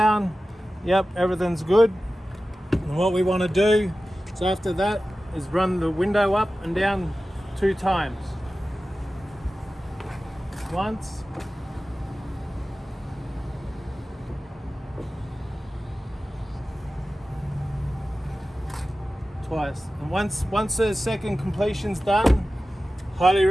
Yep, everything's good. And what we want to do is after that is run the window up and down 2 times. Once. Twice. And once the second completion's done, highly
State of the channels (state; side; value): normal; both; correlation 0.95